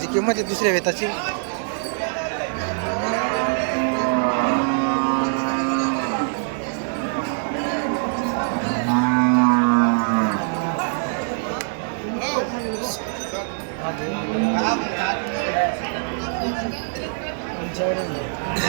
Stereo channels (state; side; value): silent; left; 56 dB below the other